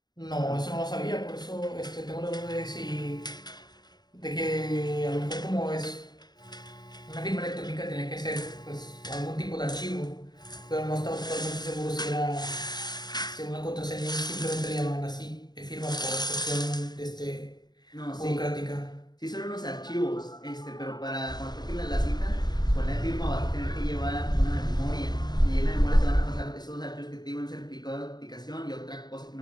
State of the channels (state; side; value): late; right; 0.20 ms